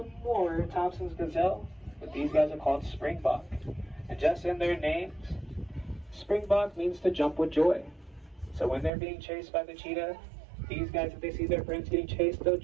more Thompson's gazelle, but these guys are called Springbok. And just in their names, Springbok means to jump with joy. So when they're being chased by the cheetah, these guys, if they see their friends getting chased, they'll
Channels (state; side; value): drops out; left; at 8.9 s